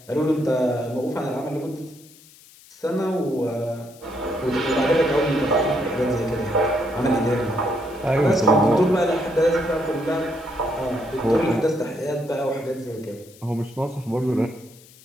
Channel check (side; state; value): left; noise; hiss, 24 dB below the sound